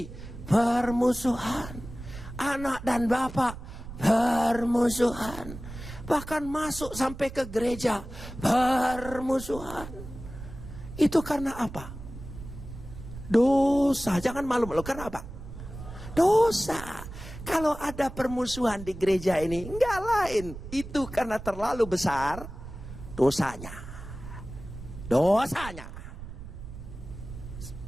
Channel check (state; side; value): noise; right; rumble, 12 dB below the sound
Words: permusuhan. Anak dan bapak permusuhan. Bahkan masuk sampai ke gereja permusuhan. Itu karena apa? Dosa. Jangan malu-malu. Karena apa? Dosa. Kalau ada permusuhan di gereja ini, enggak lain. Itu karena terlalu besar dosanya. Dosanya.